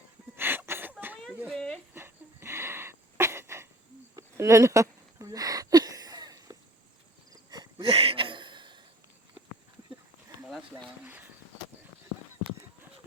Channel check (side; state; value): both; normal; correlation 0.47